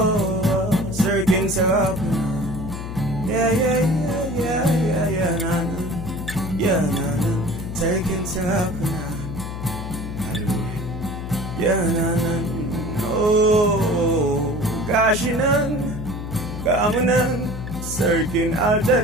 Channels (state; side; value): noise; left; hum, 7 dB below the sound